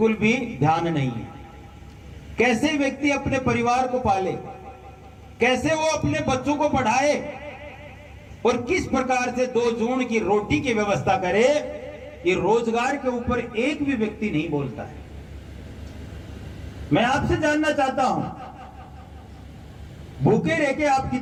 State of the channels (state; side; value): identical; both; correlation 1.00